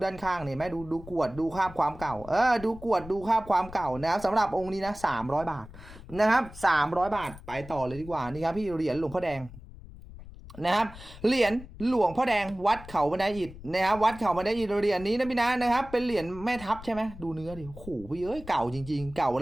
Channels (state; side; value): noise; left; rumble, 16 dB below the sound